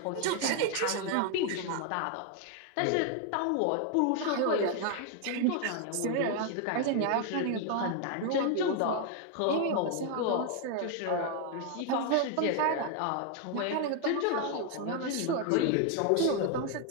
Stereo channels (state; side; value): different; both; correlation 0.00